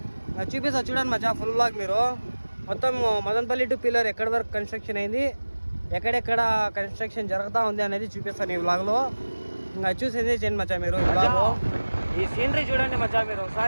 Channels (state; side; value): inverted; both; correlation -1.00